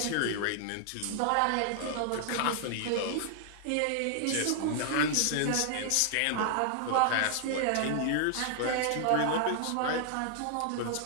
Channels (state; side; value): different; both; correlation 0.00